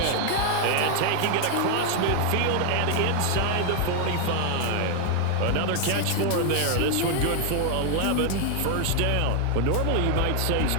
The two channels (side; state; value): both; different; correlation 0.00